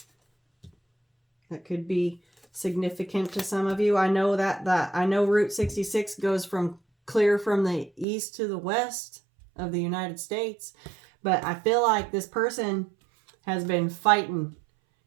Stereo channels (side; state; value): left; drops out; at 8.1 s